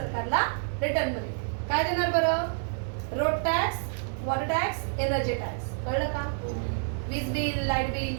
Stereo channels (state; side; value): silent; left; digital silence